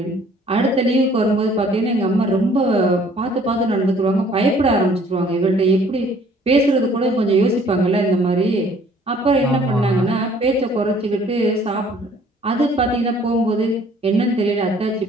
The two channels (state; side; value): normal; both; correlation 0.57